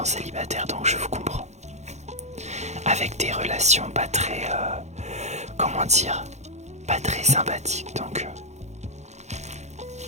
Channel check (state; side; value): late; left; 0.33 ms